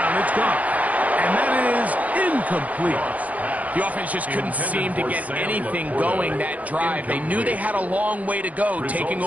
it's gone. And that is incomplete. The offense just couldn't seem to get anything going that drive. They knew they had a long way to go, taking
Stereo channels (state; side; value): late; left; 0.072 ms